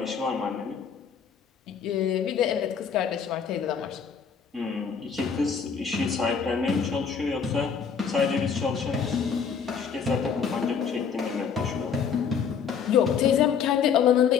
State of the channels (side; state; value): right; quieter; 6.7 dB